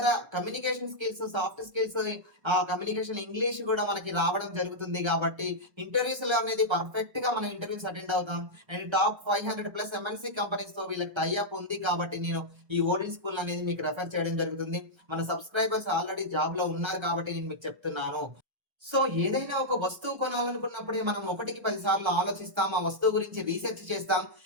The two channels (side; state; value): left; late; 1.3 ms